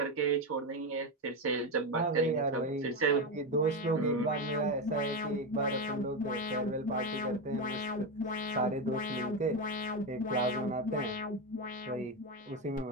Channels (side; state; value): both; normal; correlation 0.12